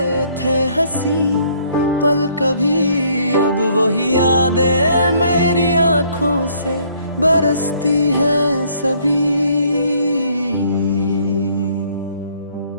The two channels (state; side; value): inverted; both; correlation -0.63